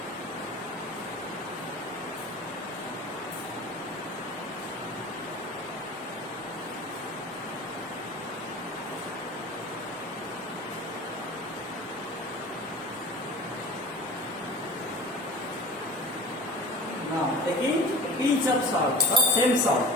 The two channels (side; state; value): both; normal; correlation 0.37